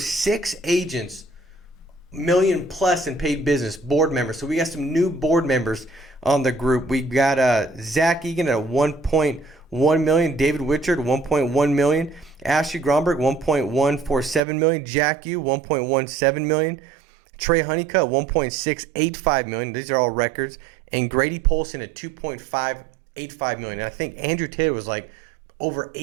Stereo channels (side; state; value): left; drops out; at 14.4 s